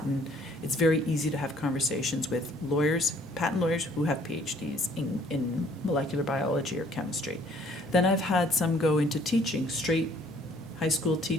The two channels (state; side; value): normal; both; correlation 0.60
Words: It's very easy to have conversations with lawyers, patent lawyers who have PhDs in molecular biology or chemistry. Then I've had some go into teaching, straight high school